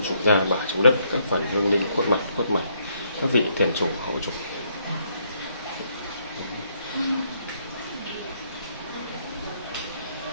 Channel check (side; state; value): both; inverted; correlation -0.71